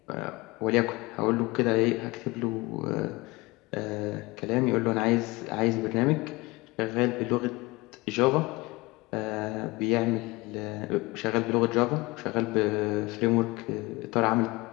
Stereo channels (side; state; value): right; quieter; 22.7 dB